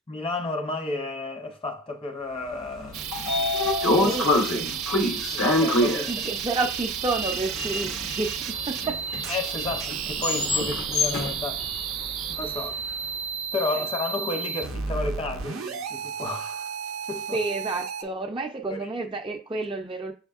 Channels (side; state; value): both; normal; correlation 0.34